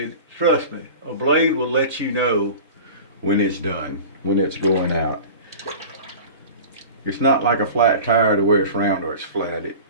Trust me, a blade will let you know when it's done, when it's going out. It's not like a flat tire to where it's round or it's flat.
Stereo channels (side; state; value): both; inverted; correlation -0.36